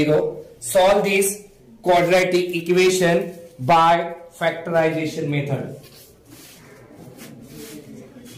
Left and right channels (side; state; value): both; identical; correlation 1.00